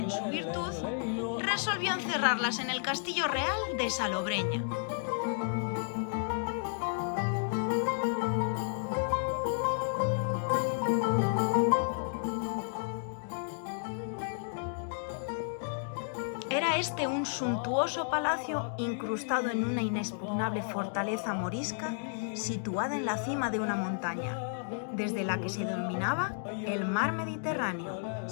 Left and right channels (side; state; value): right; silent; digital silence